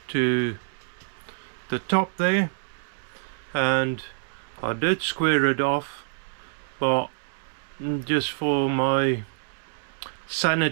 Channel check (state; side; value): silent; left; 61 dB below the other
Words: to the top there, and I did square it off, but just for my